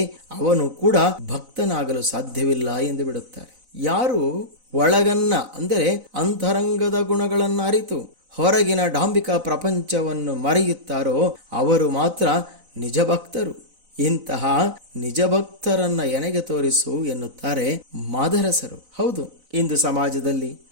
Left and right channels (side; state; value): left; late; 4.0 ms